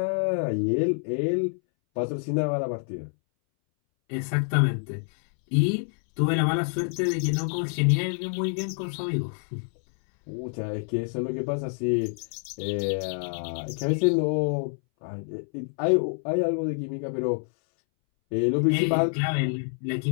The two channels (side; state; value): right; silent; 60 dB below the other